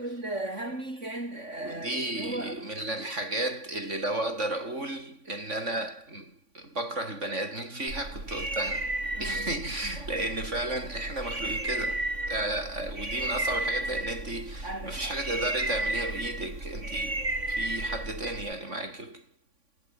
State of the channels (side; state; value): left; late; 3.5 ms